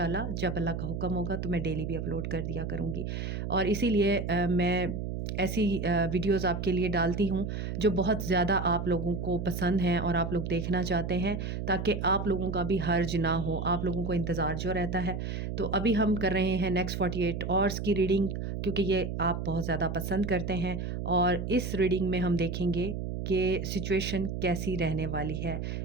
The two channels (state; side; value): noise; right; hum, 4 dB below the sound